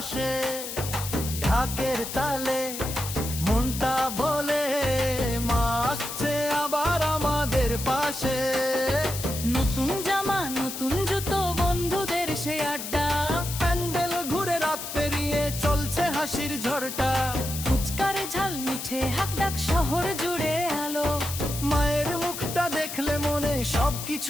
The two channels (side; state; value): left; noise; hiss, 7 dB below the sound